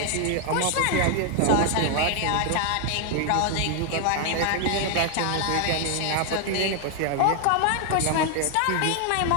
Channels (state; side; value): different; both; correlation 0.00